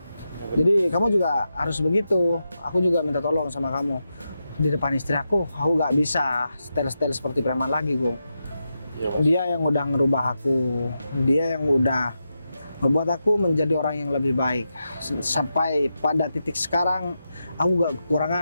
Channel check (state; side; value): inverted; both; correlation -0.88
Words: Jadi kamu juga harus begitu. Aku juga minta tolong sama kamu. Di depan istri aku nggak bisa style-style seperti preman lagi, Gung. Iya, Bos. Dia yang udah ngerubah aku, dia yang udah membuat aku menjadi orang yang lebih baik. Sampai pada titik sekarang, aku gak